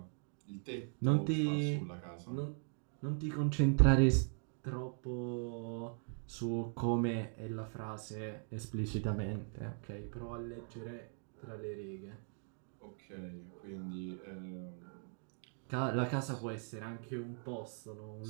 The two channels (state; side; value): silent; left; 51 dB below the other